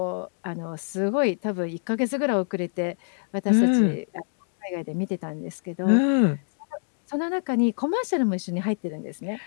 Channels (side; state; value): right; silent; digital silence